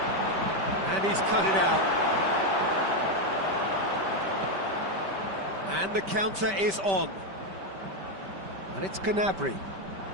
and he's cut it out. And the counter is on, and it's Gnabry.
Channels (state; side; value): late; left; 5.2 ms